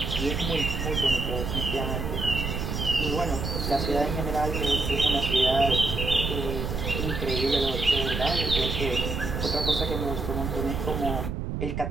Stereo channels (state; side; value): noise; right; rumble, 3 dB below the sound